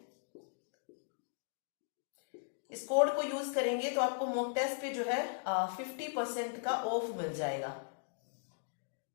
इस कोड को यूज करेंगे तो आपको मॉक टेस्ट पे जो है 50% का ऑफ मिल जाएगा।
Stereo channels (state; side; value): silent; right; digital silence